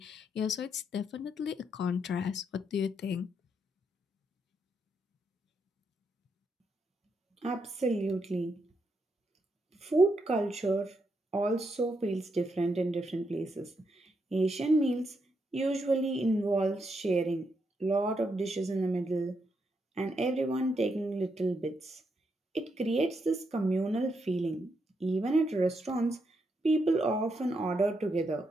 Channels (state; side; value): normal; both; correlation 0.80